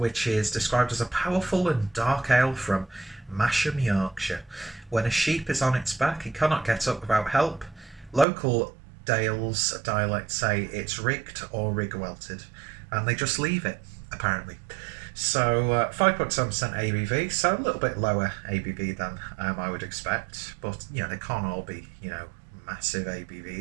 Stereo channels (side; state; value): left; drops out; at 8.2 s